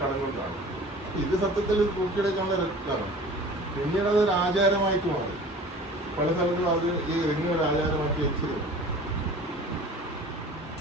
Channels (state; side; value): normal; both; correlation 0.43